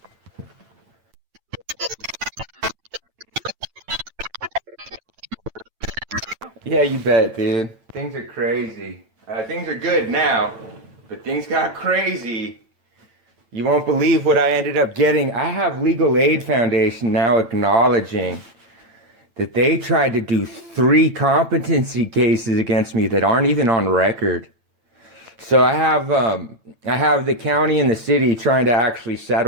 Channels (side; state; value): left; late; 8.9 ms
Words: Yeah, you bet, dude. Things are crazy. Things are good now, but things got crazy. You won't believe what I ended up getting. I have Legal Aid Foundation now acknowledging that they tried to do 3 competency cases against me that aren't even on record. So I have the county and the city trying to actually